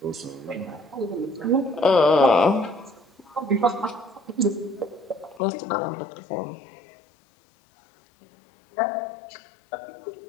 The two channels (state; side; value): drops out; right; at 5.4 s